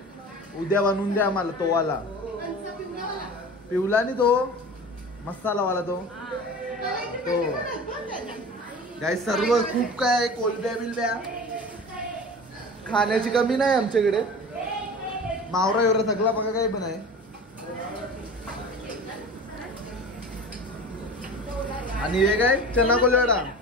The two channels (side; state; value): both; normal; correlation 0.37